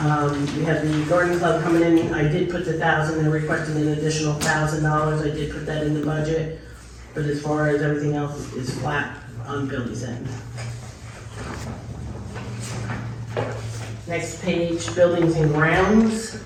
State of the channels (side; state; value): both; identical; correlation 1.00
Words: we have the garden club coming in, I did put the 1,000, they're requesting an additional $1,000, I did put that in the budget, but as far as everything else is flat on Billy's end. Next page, buildings and grounds,